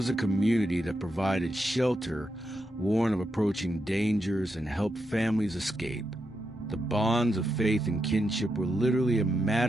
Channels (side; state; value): both; normal; correlation 0.84